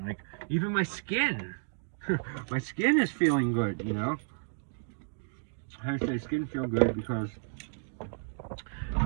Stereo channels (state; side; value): silent; left; digital silence